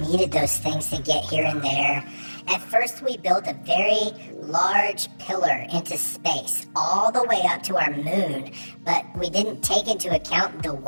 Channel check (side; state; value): both; inverted; correlation -1.00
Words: those things to get here and there. At first we built a very large pillar into space, all the way up to our moon, but we didn't take into account the